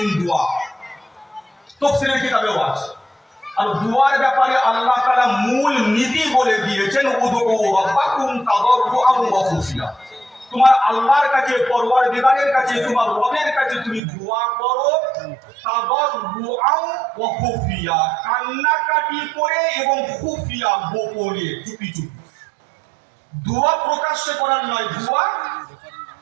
দোয়া তাফসীরের কিতাবেও আছে। আর দোয়ার ব্যাপারে আল্লাহ তাআলা মূল নীতি বলে দিয়েছেন, উদউ রাব্বাকুম তাদাররুআন ওয়া খুফিয়া। তোমার আল্লাহর কাছে, পরওয়ারদিগারের কাছে, তোমার রবের কাছে তুমি দোয়া করো তাদাররুআন ওয়া খুফিয়া, কান্নাকাটি করে এবং খুফিয়া, গোপনে, চুপি চুপি। দোয়া প্রকাশ্যে করার নয়, দোয়া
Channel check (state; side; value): drops out; left; at 14.0 s